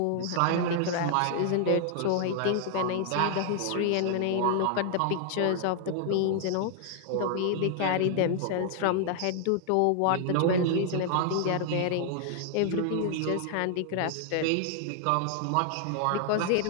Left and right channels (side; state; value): both; different; correlation 0.00